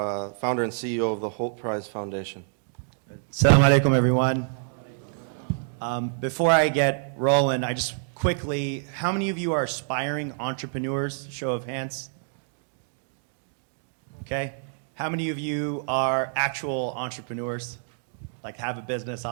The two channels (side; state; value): left; silent; digital silence